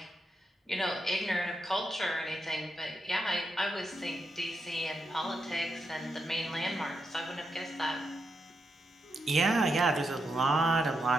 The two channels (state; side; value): normal; both; correlation 0.84